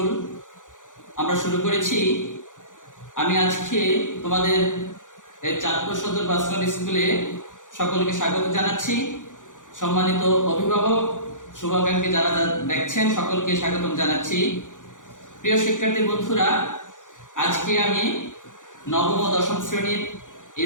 আমরা শুরু করেছি। আমি আজকে তোমাদের এই চাঁদপুর সদর ভার্চুয়াল স্কুলে সকলকে স্বাগত জানাচ্ছি। সম্মানিত অভিভাবক, শুভাকাঙ্ক্ষী যারা দেখছেন সকলকে স্বাগতম জানাচ্ছি। প্রিয় শিক্ষার্থী বন্ধুরা, আজকে আমি নবম ও দশম শ্রেণীর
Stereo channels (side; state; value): right; late; 0.87 ms